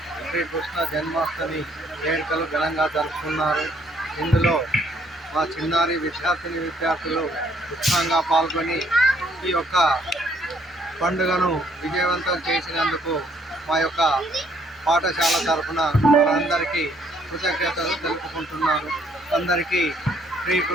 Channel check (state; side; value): normal; both; correlation 0.66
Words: శ్రీకృష్ణ జన్మాష్టమి వేడుకలు ఘనంగా జరుపుకున్నారు. ఇందులో మా చిన్నారి విద్యార్థులు ఉత్సాహంగా పాల్గొని ఈ యొక్క పండుగను విజయవంతం చేసినందుకు మా యొక్క పాఠశాల తరఫున వారందరికీ కృతజ్ఞతలు తెలుపుకుంటున్నాను. అందరికీ